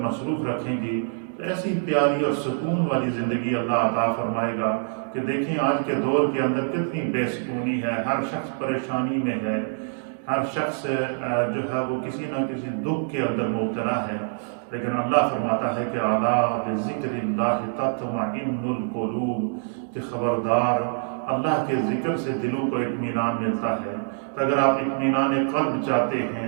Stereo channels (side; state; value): left; silent; digital silence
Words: مصروف رکھیں گی تو ایسی پیاری اور سکون والی زندگی اللہ عطا فرمائے گا کہ دیکھیں آج کے دور کے اندر کتنی بے سکونی ہے، ہر شخص پریشانی میں ہے، ہر شخص جو ہے وہ کسی نہ کسی دکھ کے اندر مبتلا ہے، لیکن اللہ فرماتا ہے کہ اعلیٰ بذکر اللہ تطمئن القلوب، کہ خبردار اللہ کے ذکر سے دلوں کو اطمینان ملتا ہے۔ تو اگر آپ اطمینان قلب چاہتے